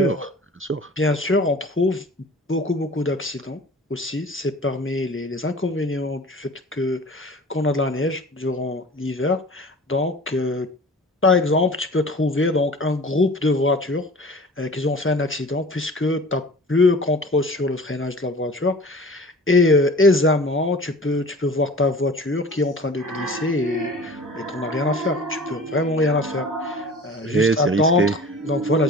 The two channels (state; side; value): normal; both; correlation 0.42